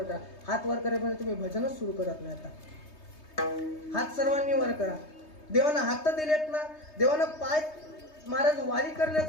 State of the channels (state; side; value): late; right; 3.2 ms